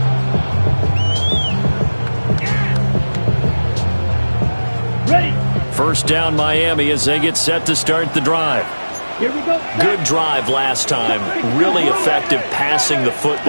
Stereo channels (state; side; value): inverted; both; correlation -1.00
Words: Ready. First down Miami as they get set to start the drive. Here we go. Good drive last time. Really effective passing the